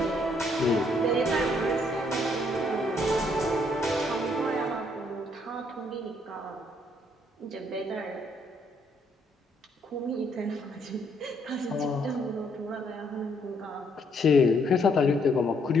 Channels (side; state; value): both; normal; correlation 0.70